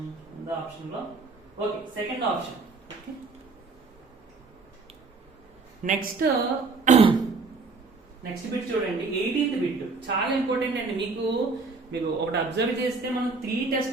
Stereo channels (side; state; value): left; quieter; 4.1 dB